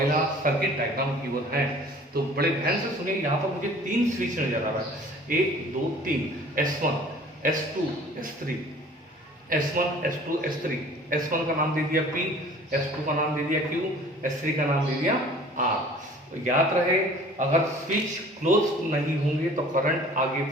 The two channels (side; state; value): both; normal; correlation 0.48